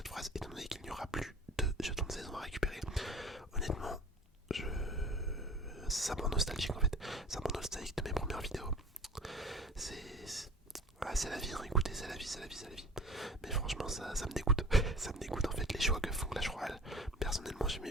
phrase étant donné qu'il n'y aura plus de jetons de saison à récupérer. Honnêtement, ça me rend nostalgique en fait. Ça me rend nostalgique de mes premières vidéos. C'est la vie, hein. Écoutez, c'est la vie, c'est la vie, c'est la vie. Mais franchement, ça me dégoûte. Ça me dégoûte en fait les choix que font Clash Royale. Personnellement,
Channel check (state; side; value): normal; both; correlation 0.43